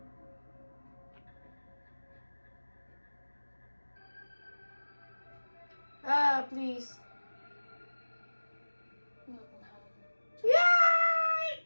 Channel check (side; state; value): both; inverted; correlation -1.00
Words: Ah, please. Welcome home.